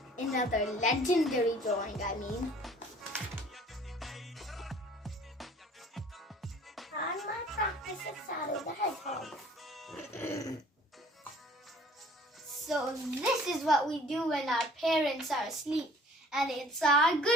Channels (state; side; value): normal; both; correlation 0.52